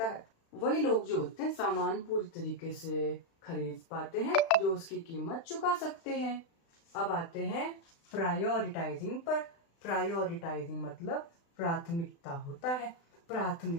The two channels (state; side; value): late; right; 36 ms